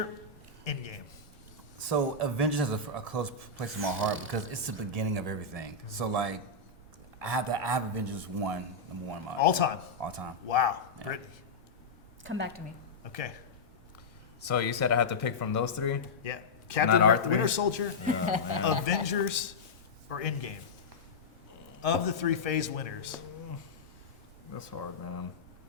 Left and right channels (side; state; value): right; quieter; 3.9 dB